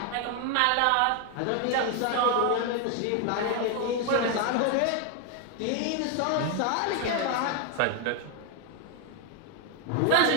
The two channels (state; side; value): different; both; correlation 0.01